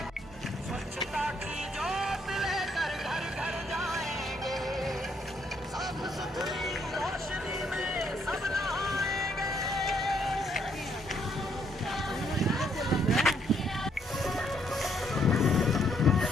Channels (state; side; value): normal; both; correlation 0.71